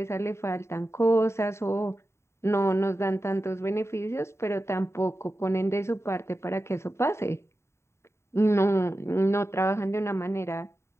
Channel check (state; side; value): late; right; 0.13 ms